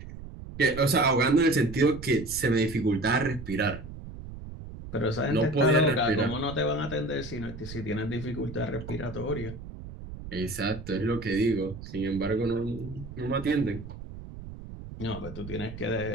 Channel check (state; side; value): noise; right; rumble, 12 dB below the sound